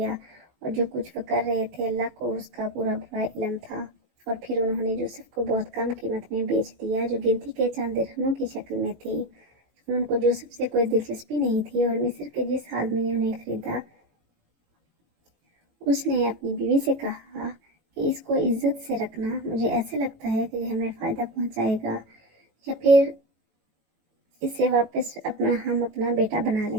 اور جو کچھ وہ کر رہے تھے اللہ کو اس کا پورا علم تھا۔ اور پھر انہوں نے یوسف کو بہت کم قیمت میں بیچ دیا جو گنتی کے چند درہموں کی شکل میں تھی۔ اور ان کو یوسف سے کوئی دلچسپی نہیں تھی اور مصر کے جس آدمی نے انہیں خریدا اس نے اپنی بیوی سے کہا کہ اس کو عزت سے رکھنا، مجھے ایسے لگتا ہے کہ یہ ہمیں فائدہ پہنچائے گا یا پھر اسے واپس ہم اپنا بیٹا بنا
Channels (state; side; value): late; left; 18 ms